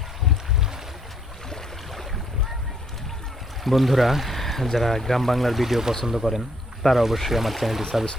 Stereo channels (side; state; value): both; normal; correlation 0.68